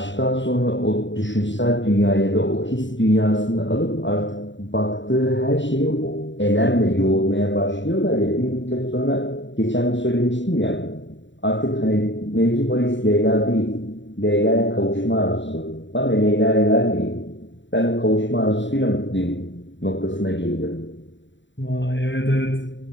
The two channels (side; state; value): right; late; 0.54 ms